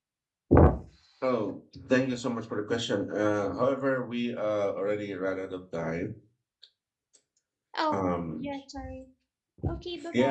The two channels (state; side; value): identical; both; correlation 1.00